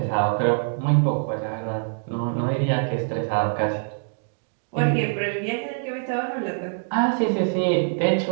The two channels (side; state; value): left; silent; digital silence